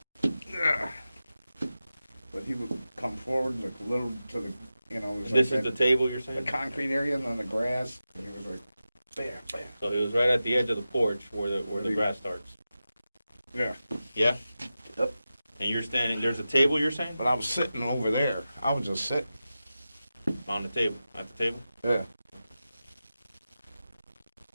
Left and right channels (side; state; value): both; inverted; correlation -0.93